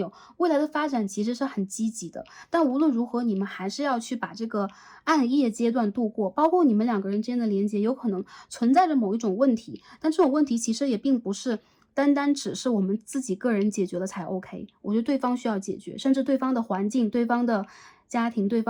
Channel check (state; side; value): identical; both; correlation 1.00